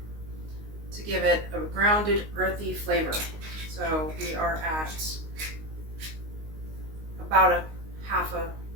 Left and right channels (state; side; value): late; left; 19 ms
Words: to give it a grounded, earthy flavor. So we are at about a half a